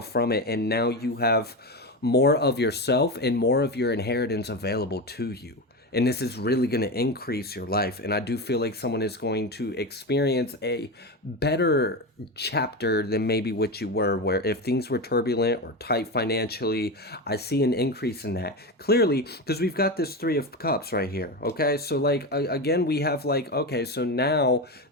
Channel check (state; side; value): normal; both; correlation 0.19